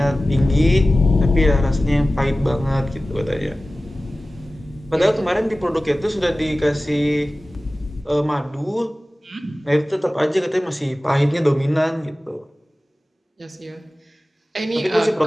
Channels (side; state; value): both; normal; correlation 0.97